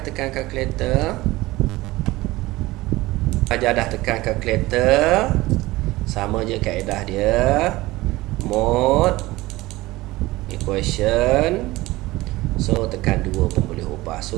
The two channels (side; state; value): left; quieter; 19.2 dB